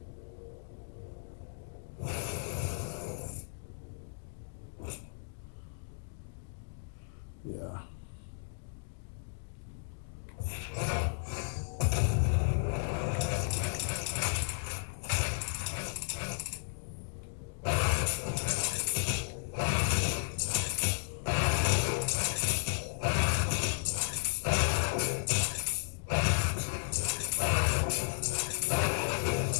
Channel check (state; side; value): silent; right; digital silence